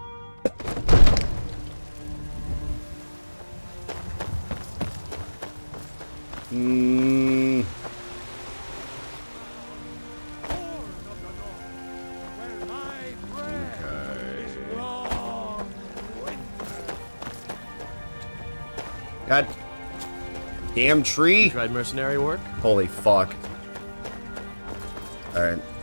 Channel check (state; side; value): inverted; both; correlation -1.00